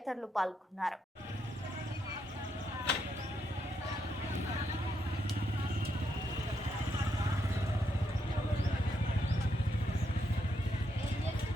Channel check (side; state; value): both; normal; correlation 0.79